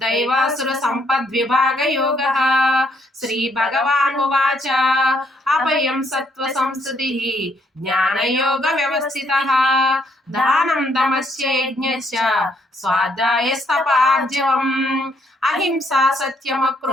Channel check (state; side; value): normal; both; correlation 0.70